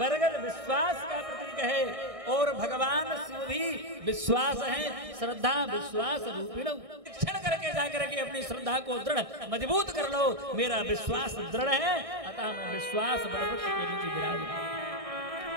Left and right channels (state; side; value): late; left; 1.6 ms